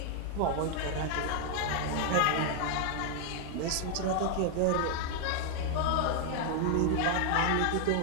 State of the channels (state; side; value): different; both; correlation 0.00